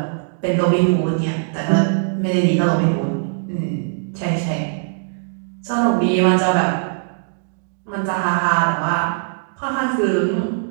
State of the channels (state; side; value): silent; left; digital silence